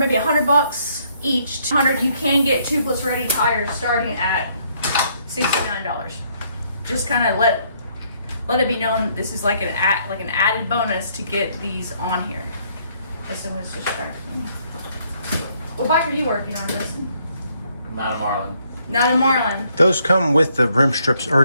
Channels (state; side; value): inverted; both; correlation -0.69